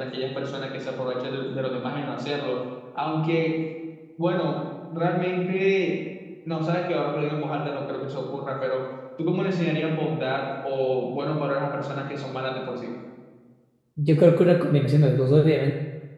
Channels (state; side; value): identical; both; correlation 1.00